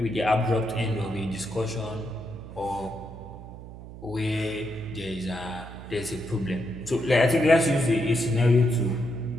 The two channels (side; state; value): right; noise; hum, 14 dB below the sound